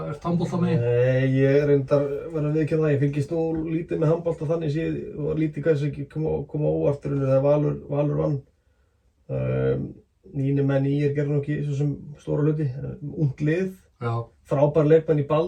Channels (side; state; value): both; identical; correlation 1.00